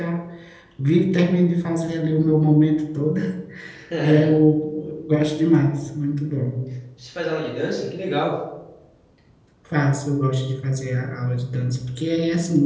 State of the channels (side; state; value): both; identical; correlation 1.00